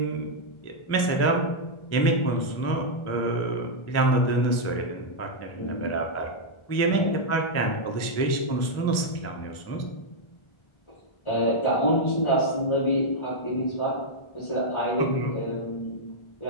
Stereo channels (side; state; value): right; late; 1.4 ms